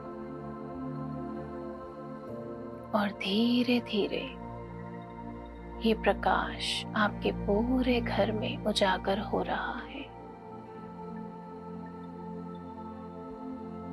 और धीरे धीरे ये प्रकाश आपके पूरे घर में उजागर हो रहा है।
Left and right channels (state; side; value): identical; both; correlation 1.00